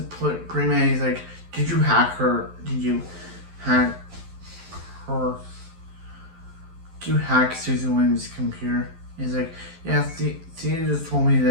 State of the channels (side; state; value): left; late; 11 ms